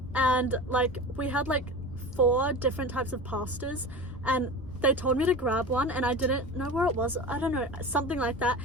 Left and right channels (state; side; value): normal; both; correlation 0.31